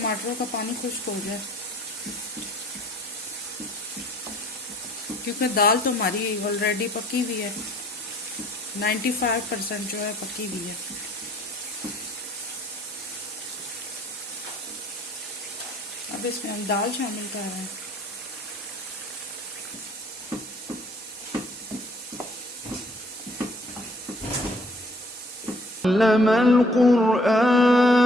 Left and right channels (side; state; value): both; normal; correlation 0.59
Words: का पानी खुश्क हो जाए, क्योंकि दाल तो हमारी ऑलरेडी पकी हुई है, 95% जो है पकी हुई है। अब इसमें हम दाल शामिल कर रहे हैं। अल्लमल क़ुरआन